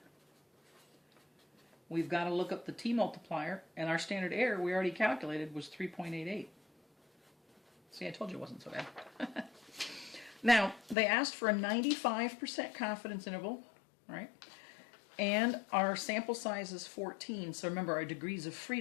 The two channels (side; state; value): right; drops out; at 11.0 s